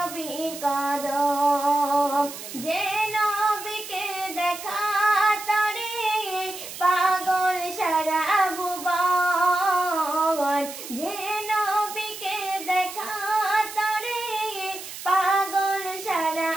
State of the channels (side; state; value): right; noise; hiss, 11 dB below the sound